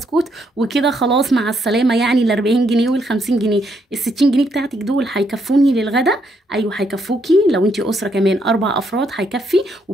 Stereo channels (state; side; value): normal; both; correlation 0.75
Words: وكده خلاص مع السلامه. يعني ال 40 جنيه وال 50 جنيه، ال 60 جنيه بتاعتك دول هيكفوني للغدا؟ ايوه هيكفوكي. لو انت اسره كمان 4 افراد هيكفي